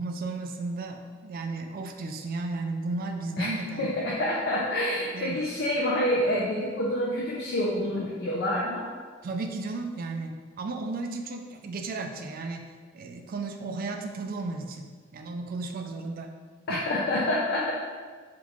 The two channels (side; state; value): both; normal; correlation 0.27